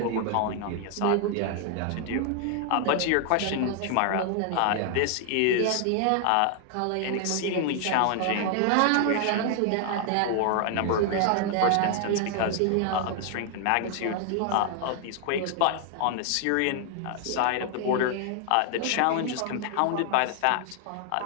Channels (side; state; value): both; different; correlation 0.00